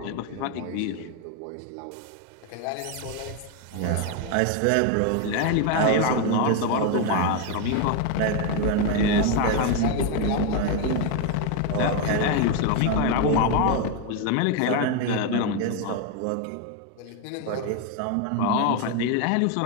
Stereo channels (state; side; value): different; both; correlation 0.01